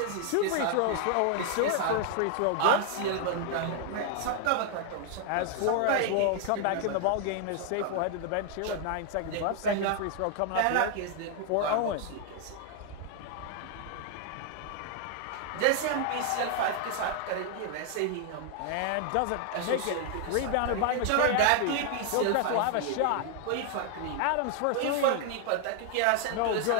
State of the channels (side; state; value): both; different; correlation 0.00